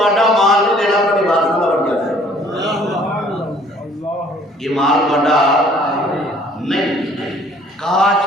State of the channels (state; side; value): normal; both; correlation 0.57